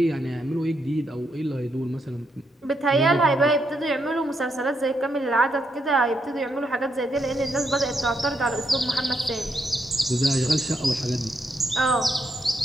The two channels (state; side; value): normal; both; correlation 0.79